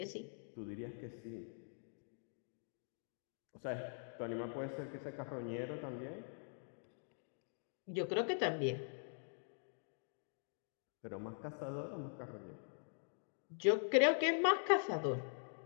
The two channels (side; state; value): right; silent; digital silence